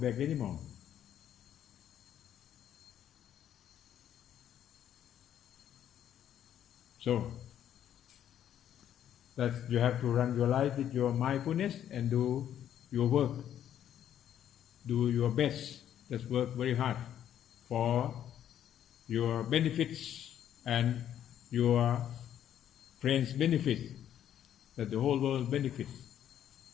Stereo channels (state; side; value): quieter; right; 10.4 dB